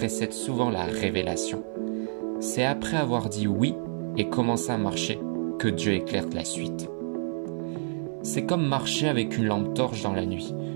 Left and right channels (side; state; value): left; silent; 57 dB below the other